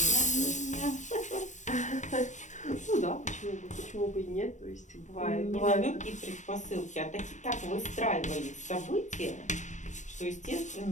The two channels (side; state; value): right; late; 0.35 ms